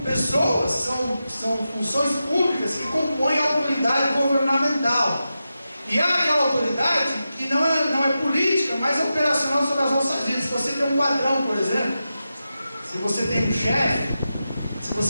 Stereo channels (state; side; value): inverted; both; correlation -0.91